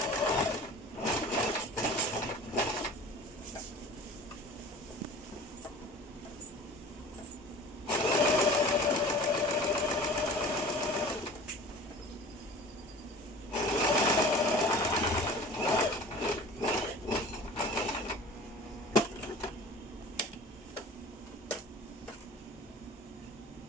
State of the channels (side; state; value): both; normal; correlation 0.42